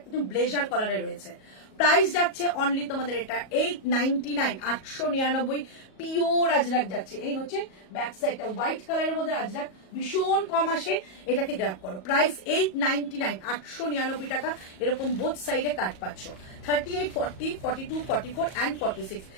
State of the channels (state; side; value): late; right; 37 ms